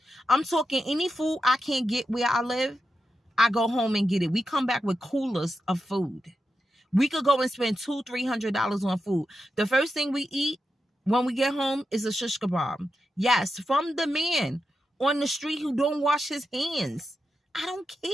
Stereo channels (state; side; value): normal; both; correlation 0.88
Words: I'm talking any food I can't get where I live, I go home and get it. We come back with coolers of food. We could go and spend $200-$300 on food. The first thing we eat when we get home is a shish kebab. Yes, from the man on the street who don't wash his hands. I don't